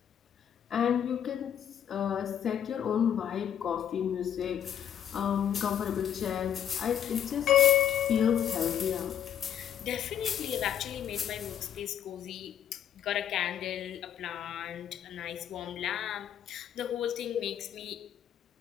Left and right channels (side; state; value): right; quieter; 9.6 dB